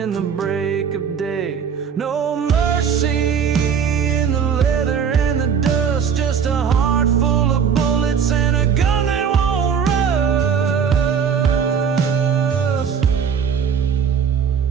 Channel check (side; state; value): left; quieter; 7.1 dB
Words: the break of day. No mercy in the leather and the dust, just a heart full of bullets and a gun that won't rust.